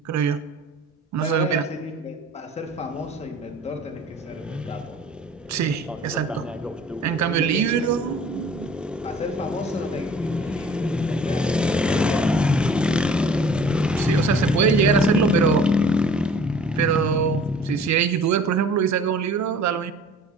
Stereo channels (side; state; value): both; normal; correlation 0.50